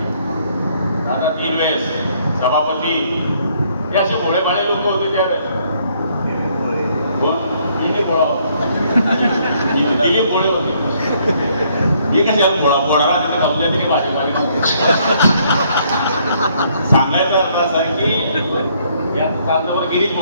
दादा 3 वेळेस सभापती हे असे भोळेभाळे लोक होते त्यावेळेस. कोण? दिलीप भोळा. दिलीप भोळे होते. मी कशाला भोळा तिथे कमल्या तरी माझे सांगायचा अर्थ असा आहे की या कांदावर गिरीश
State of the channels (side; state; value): both; inverted; correlation -0.67